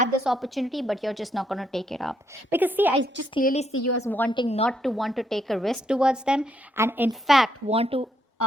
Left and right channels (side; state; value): both; normal; correlation 0.75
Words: this opportunity but you're just not going to take it up. Because see, I just clearly see you as wanting not to want to take a risk towards them, and in fact want to